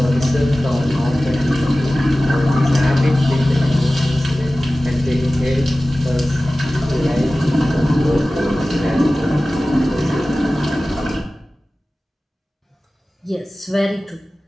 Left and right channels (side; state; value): both; normal; correlation 0.96